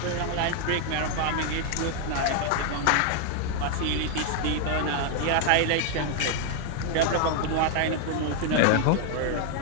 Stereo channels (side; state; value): both; different; correlation 0.00